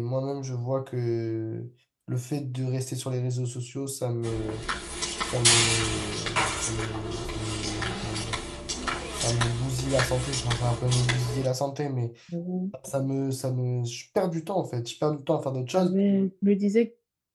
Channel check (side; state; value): both; identical; correlation 1.00